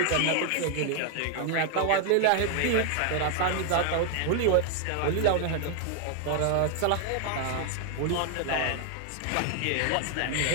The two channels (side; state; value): both; different; correlation 0.00